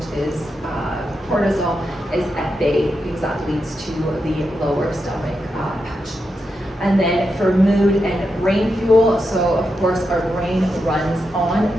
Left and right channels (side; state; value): both; normal; correlation 0.86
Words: is cortisol, is at bay, because that leads to the lower stomach patch. And then for mood and brain fuel, so of course our brain runs on